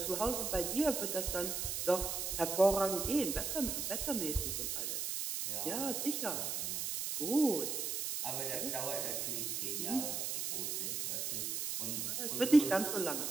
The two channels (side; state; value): right; noise; hiss, 1 dB below the sound